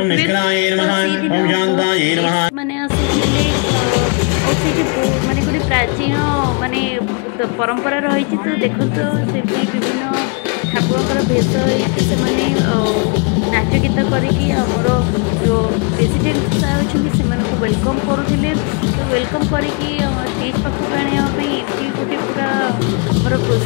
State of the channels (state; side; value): quieter; right; 35.9 dB